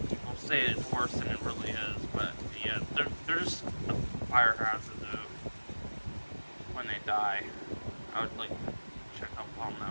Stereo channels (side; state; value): both; inverted; correlation -1.00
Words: people say it's worse than it really is, but yeah, they're just a fire hazard though. When they die, I would like check up on